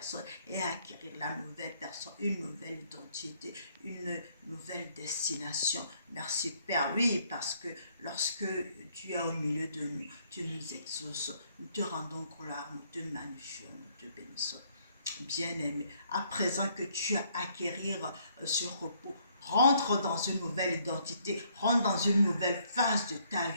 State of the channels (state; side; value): inverted; both; correlation -0.68